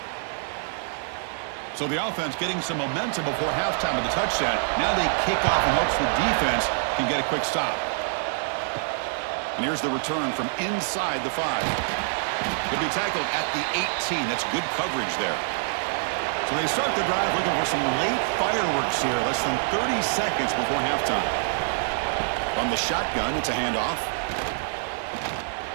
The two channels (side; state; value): left; silent; 57 dB below the other